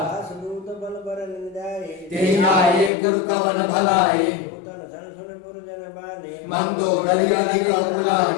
दासदूत बल बरन जाए ते आए गुरु कवन भलाई तन धन सुन पुरजन बानी मंदो दरिया निकल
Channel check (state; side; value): drops out; right; at 2.9 s